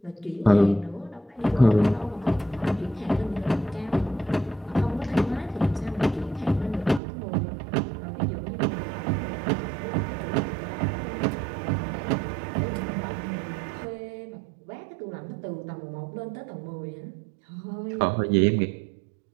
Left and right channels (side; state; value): left; drops out; at 7.0 s